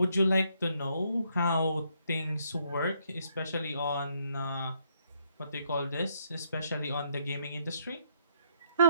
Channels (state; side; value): inverted; both; correlation -0.72